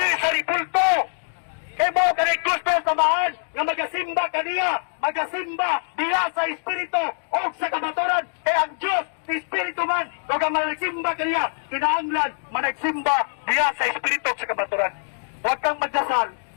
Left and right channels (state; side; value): silent; right; digital silence